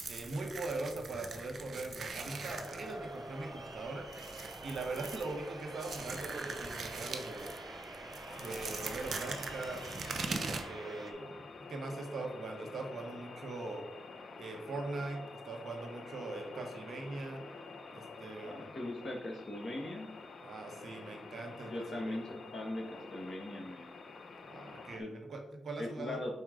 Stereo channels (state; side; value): normal; both; correlation 0.83